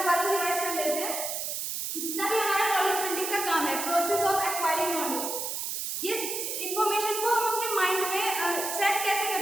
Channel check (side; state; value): right; noise; hiss, 3 dB below the sound